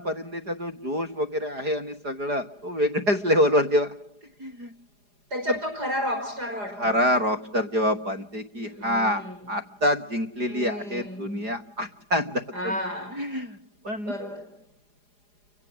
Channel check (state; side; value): late; left; 4.9 ms